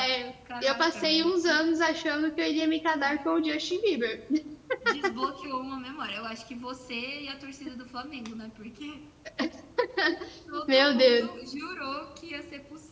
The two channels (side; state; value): both; identical; correlation 1.00